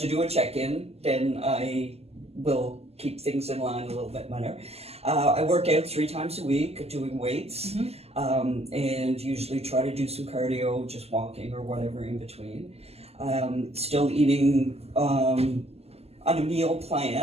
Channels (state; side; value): late; left; 0.29 ms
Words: do a check-in, then I will keep things in line a little bit better. I work out 3 times a week doing weights and usually try to do some cardio, just walking or whatever in between. Still eating on a meal